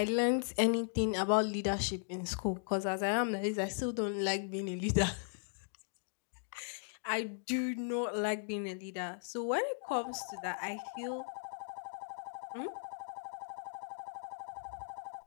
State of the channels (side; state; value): right; silent; digital silence